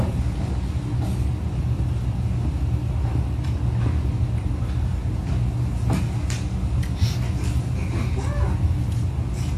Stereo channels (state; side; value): identical; both; correlation 1.00